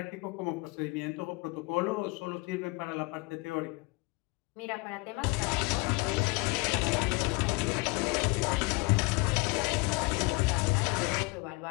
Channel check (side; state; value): right; quieter; 25.4 dB